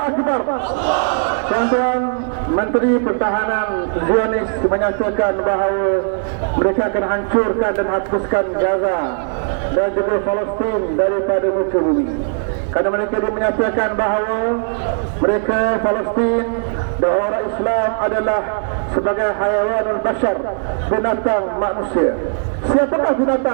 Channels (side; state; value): left; silent; 67 dB below the other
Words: Tuan-tuan, Menteri Pertahanan Zionis menyatakan bahawa mereka akan hancurkan dan hapuskan Gaza dan juga Palestin daripada muka bumi. Kerana mereka menyatakan bahawa mereka Palestin dan orang Islam adalah sebagai hayawanul bashar, binatang manusia. Siapakah